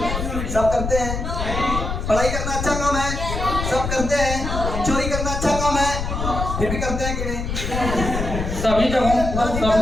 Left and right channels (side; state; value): left; noise; rumble, 3 dB below the sound